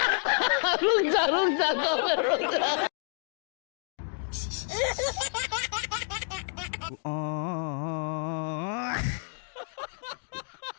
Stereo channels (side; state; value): right; silent; digital silence